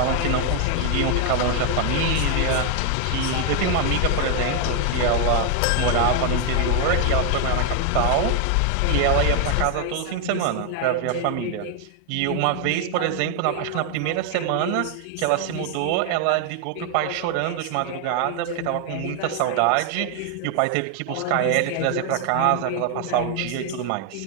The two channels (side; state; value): both; different; correlation 0.00